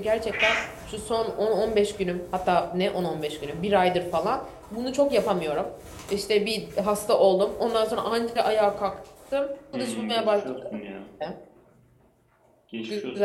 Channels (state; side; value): identical; both; correlation 1.00